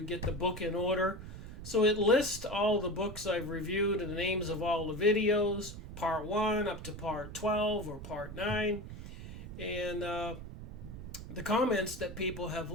get the book in order. So it lists all the books I've reviewed and the names of all the videos, part 1 up to part 12 or part 9, and the comments that people have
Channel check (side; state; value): right; noise; rumble, 11 dB below the sound